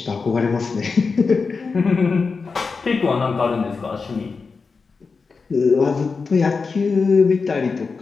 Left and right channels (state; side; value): quieter; right; 4.7 dB